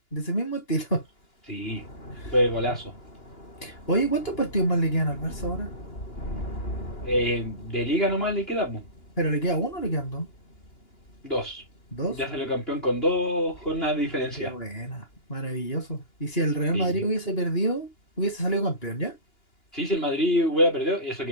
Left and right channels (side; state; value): right; late; 2.9 ms